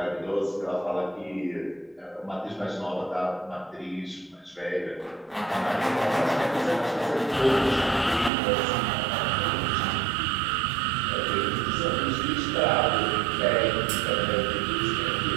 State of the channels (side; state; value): left; drops out; at 8.3 s